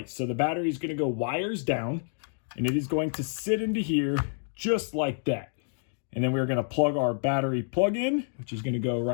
So the battery is going to go wires down. and it is going to sit into here just like that. And then we're going to plug our battery plug in, which is going to go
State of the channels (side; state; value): right; silent; digital silence